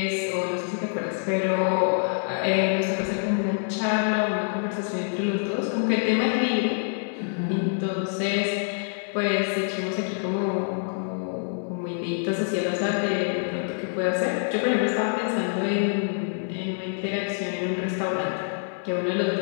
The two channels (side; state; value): right; silent; 61 dB below the other